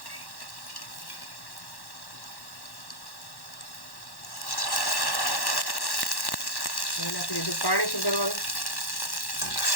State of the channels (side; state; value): right; late; 1.1 ms